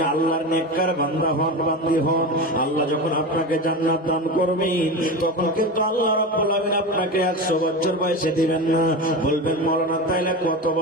আল্লাহর নেককার বান্দা হন, বান্দি হন, আল্লাহ যখন আপনাকে জান্নাত দান করবেন, তখন কিন্তু আল্লাহ রাব্বুল আলামিন আপনাকে 100 বছর বয়সে দিবেন না। বলবেন, মাওলানা তাইলে কত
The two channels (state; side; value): normal; both; correlation 0.24